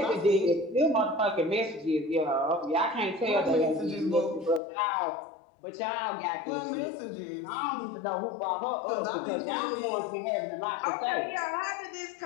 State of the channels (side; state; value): right; drops out; at 4.6 s